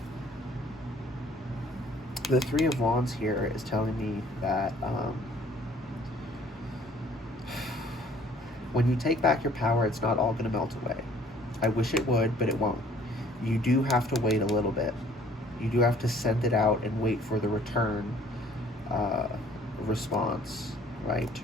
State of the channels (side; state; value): both; normal; correlation 0.57